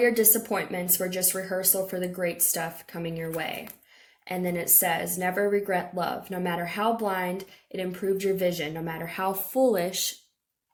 disappointments were just rehearsal for the great stuff coming your way. And then it says, never regret love. No matter how blind, it improved your vision. No matter how foolish,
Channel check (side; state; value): both; identical; correlation 1.00